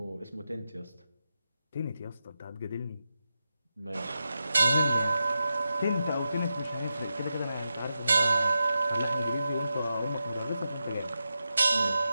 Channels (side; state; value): both; inverted; correlation -0.89